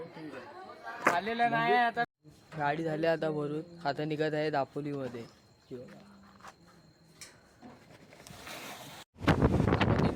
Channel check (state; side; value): identical; both; correlation 1.00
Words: आलेलं नाही आता. गाडी झाली आता भरून. आता निघत आहे दापोलीमध्ये.